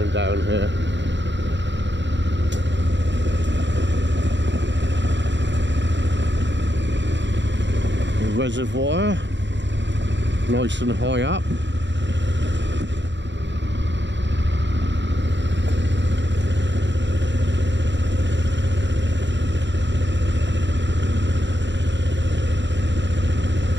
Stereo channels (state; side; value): late; left; 0.52 ms